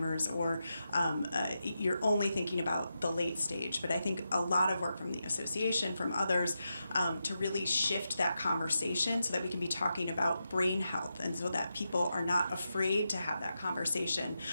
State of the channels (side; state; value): both; inverted; correlation -0.88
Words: or you're only thinking about the late stage. But I think a lot of work from the association, from others, to really shift that conversation so that we can be talking about brain health, and so that people are not afraid to have that conversation,